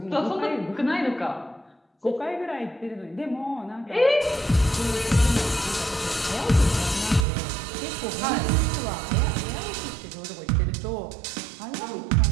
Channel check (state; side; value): drops out; left; at 7.2 s